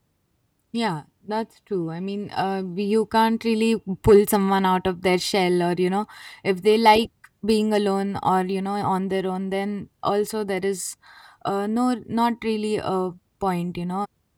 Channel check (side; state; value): both; identical; correlation 1.00